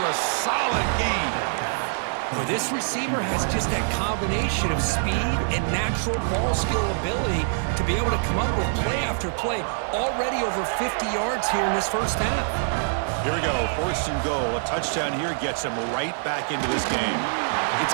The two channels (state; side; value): silent; left; 62 dB below the other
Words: a solid gain. Well, this receiver has just that combination of speed and natural ball skill ability to be able to come up with play after play. Already over 50 yards here in this first half. Here we go, 1st and goal. A touchdown here gets him right back into this game. It's